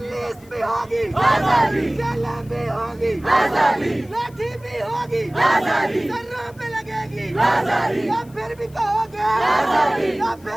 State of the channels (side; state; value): left; noise; hiss, 28 dB below the sound